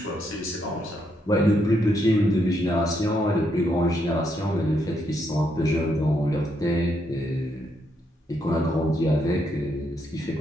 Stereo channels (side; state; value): both; normal; correlation 0.77